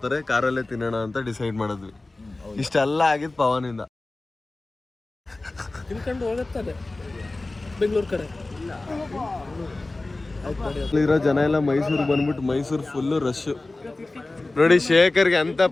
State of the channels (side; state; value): right; quieter; 3.1 dB